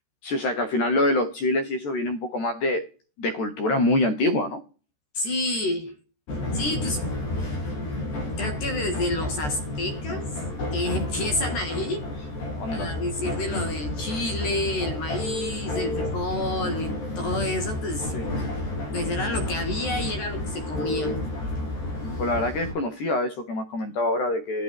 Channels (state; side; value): late; right; 13 ms